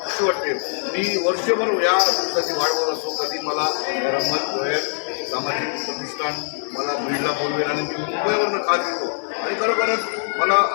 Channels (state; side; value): silent; right; digital silence